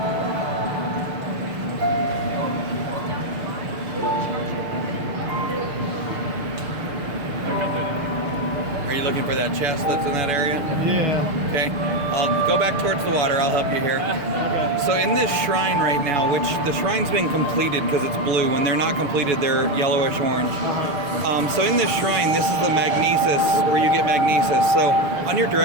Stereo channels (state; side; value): late; left; 6.7 ms